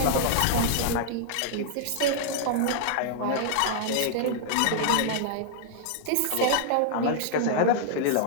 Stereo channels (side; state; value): both; different; correlation -0.01